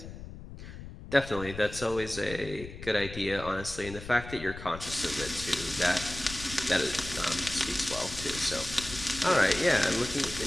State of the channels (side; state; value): left; noise; rumble, 12 dB below the sound